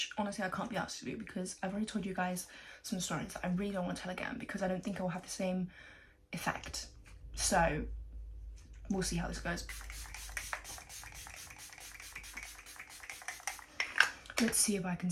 honestly I can't be asked to do because I've already told you guys some stories that I really don't want to tell again because I don't think it will have the same effect. So we'll see how this goes. Let's see if I can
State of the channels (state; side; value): identical; both; correlation 1.00